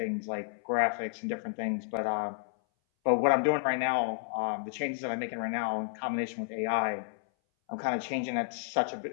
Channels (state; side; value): silent; right; 57 dB below the other